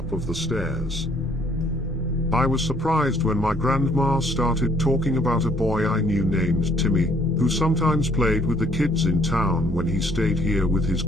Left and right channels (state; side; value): normal; both; correlation 0.63